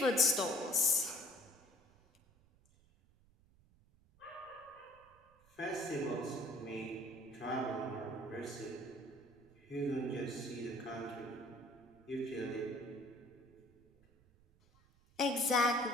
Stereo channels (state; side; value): noise; right; rumble, 29 dB below the sound